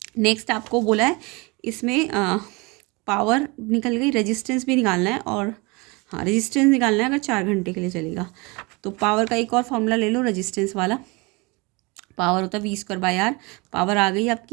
नेक्स्ट आपको बोला है इसमें पावर निकल गई, रेजिस्टेंस भी निकालना है, और हाँ रेजिस्टेंस निकालना है अगर 4 घंटे के लिए चलेगा। तो पावर का एक और फॉर्मूला ले लो रेजिस्टेंस वाला। पावर होता है V²/R। पावर आ गई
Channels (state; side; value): quieter; left; 26.8 dB